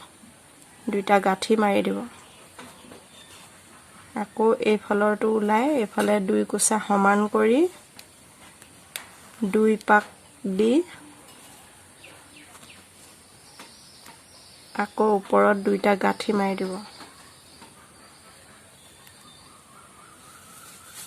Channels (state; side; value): identical; both; correlation 1.00